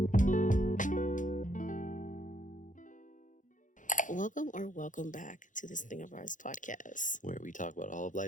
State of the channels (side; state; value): right; late; 0.37 ms